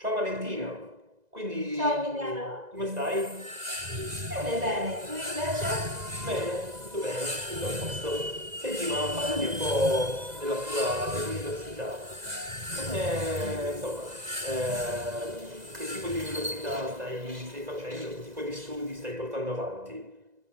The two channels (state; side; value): late; left; 2.0 ms